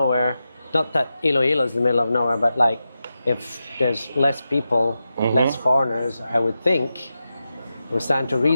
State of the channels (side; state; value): both; inverted; correlation -0.91